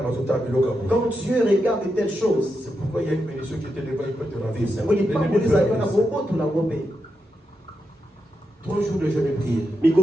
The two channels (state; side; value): normal; both; correlation 0.85